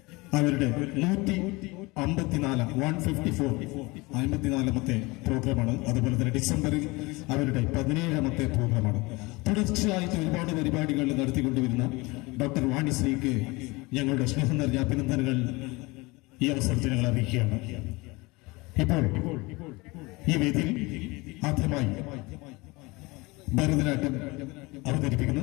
അവരുടെ 154ാമത്തെ പ്രോഗ്രാമാണ്. അതുപോലെ തന്നെ ഡിസംബറിൽ അവരുടെ 17ാമത്തെ പ്രോഗ്രാമാണ്. തുടർച്ചയായിട്ട് ഒരുപാട് പരിപാടികൾ നടത്തിക്കൊണ്ടുവരുന്ന ഡോക്ടർ വാണിശ്രീക്ക് ഞങ്ങളുടെ സ്നേഹം നിറഞ്ഞ അഭിനന്ദനങ്ങൾ ഈ അവസരത്തിൽ ഞങ്ങൾ അറിയിക്കുകയാണ്. ഇപ്പോൾ ഈ വേദിയിൽ ആദ്യമായി ഭരതനാട്യം അവതരിപ്പിക്കുന്നു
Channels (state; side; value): quieter; right; 23.8 dB